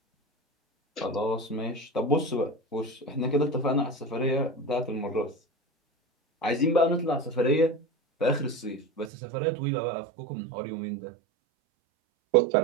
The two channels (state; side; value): drops out; left; at 9.1 s